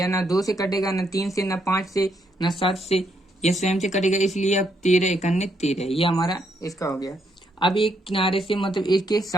ना 2 से कटेगा, ना 3 से, ना 5 से, ना 7 से, यह स्वयं से कटेगा, इसलिए अब 13 इकन्ने 13, ये हमारा इसका हो गया। अब एक किनारे से मतलब इसके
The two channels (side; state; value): both; normal; correlation 0.75